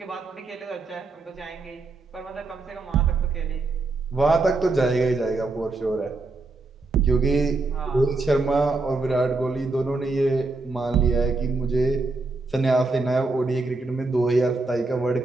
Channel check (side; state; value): left; quieter; 3.5 dB